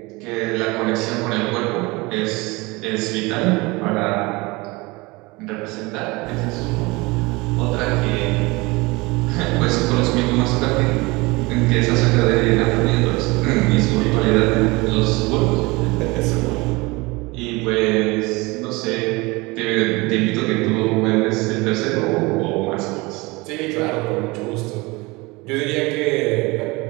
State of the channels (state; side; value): quieter; left; 24.0 dB